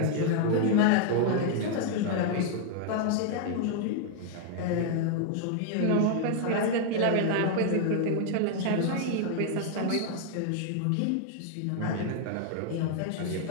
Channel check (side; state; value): both; different; correlation 0.00